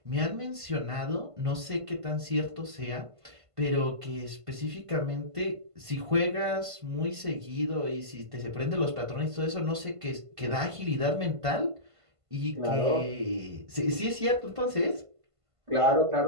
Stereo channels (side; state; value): left; late; 1.5 ms